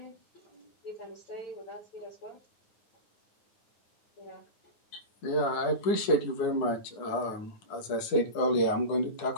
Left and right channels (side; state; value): right; late; 9.8 ms